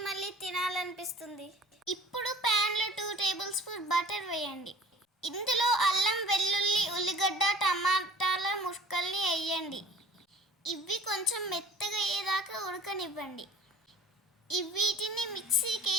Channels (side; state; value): both; normal; correlation 0.47